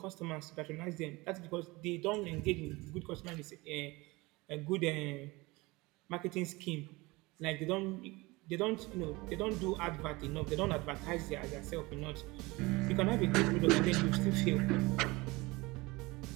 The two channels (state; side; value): quieter; left; 22.9 dB